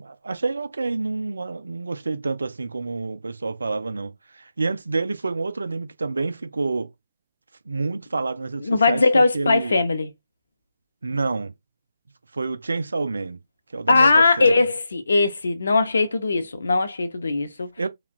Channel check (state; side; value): inverted; both; correlation -0.88